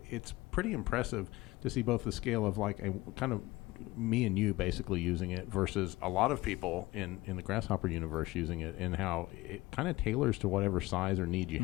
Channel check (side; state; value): right; quieter; 19.4 dB